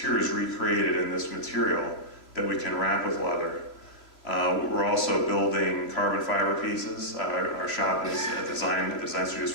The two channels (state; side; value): late; right; 3.0 ms